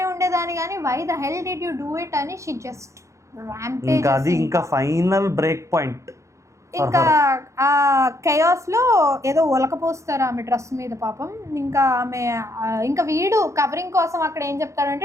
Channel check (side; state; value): left; late; 0.15 ms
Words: ఉండేదాన్ని కానీ why the hell did you do it అని షీ జస్ట్ ర్యాంపేజ్. అది ఇంకా ఫైనల్ బ్రేక్ పాయింట్. ఇంకా ఆ కెయాస్లో ఏదో ఒలకపోస్తారు ఆమె డ్రెస్ మీద పాపం. ఇంకా ఆమె ఇంకా వీడు కవరింగ్ కోసం అక్కడ ఏం